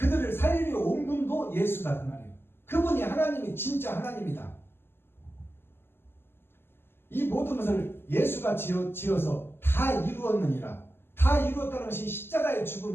살리려 온 분도 예수다 그 말이에요. 그분이 하나님이 진짜 하나님이다. 이 모든 것을 예수가 지어서 다 이루었느니라. 다 이루었다는 것이 십자가의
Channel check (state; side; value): late; right; 0.11 ms